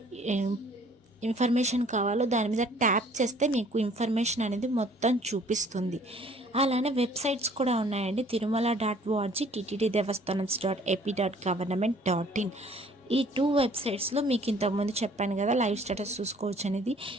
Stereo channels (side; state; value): both; normal; correlation 0.56